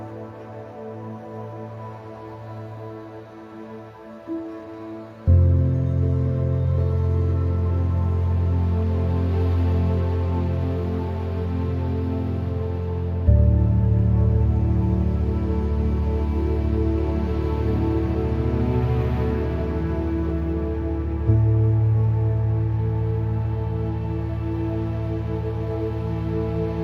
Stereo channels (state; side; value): identical; both; correlation 1.00